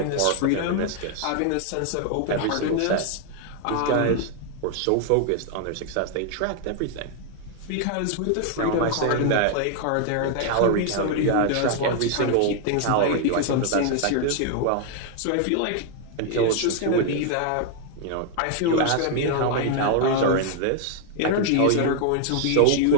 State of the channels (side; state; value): both; different; correlation 0.00